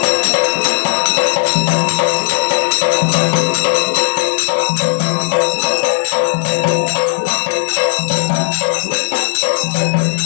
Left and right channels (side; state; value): right; silent; 60 dB below the other